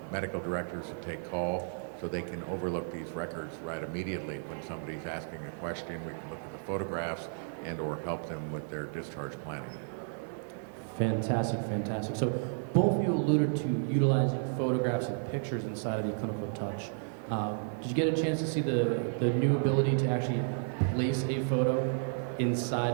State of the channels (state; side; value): silent; left; 56 dB below the other